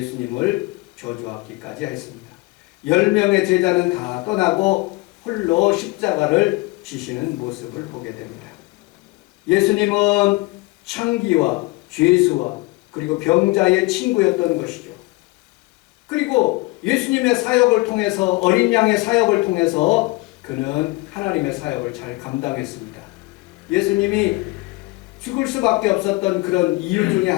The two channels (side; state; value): right; quieter; 22.7 dB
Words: 저주하기까지 했습니다. 10명의 제자는 다 떠나고 홀로 십자가를 지시는 모습을 보게 됩니다. 예수님은 창기와 죄수와 그리고 병자의 친구였던 것이죠. 그리고 예수님의 사역을 통해서 어린 양의 사역을 통해서 그는 하나님의 사역을 잘 감당했습니다. 예수님이 죽을 수밖에 없었던 그런 이유 중에